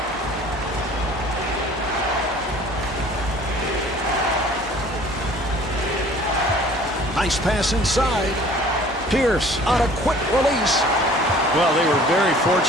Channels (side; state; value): both; normal; correlation 0.50